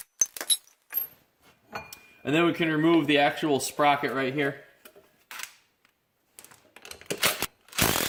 and then we can remove the actual sprocket right here.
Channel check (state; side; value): identical; both; correlation 1.00